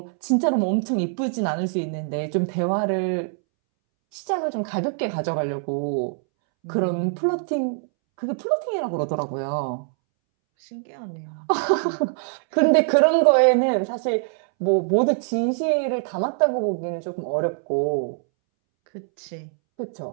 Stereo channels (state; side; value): silent; left; 63 dB below the other